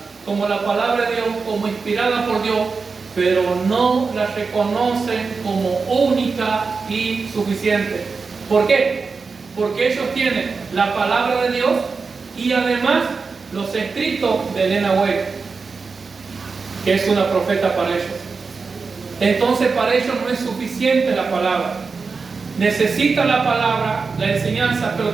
como la palabra de Dios, como inspirada por Dios, pero no la reconocen como única y suficiente. ¿Por qué? Porque ellos tienen la palabra de Dios y además los escritos de Elena White, que es una profeta para ellos. Entonces para ellos no es suficiente la palabra. Necesitan la palabra, la enseñanza, pero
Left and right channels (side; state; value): left; quieter; 4.7 dB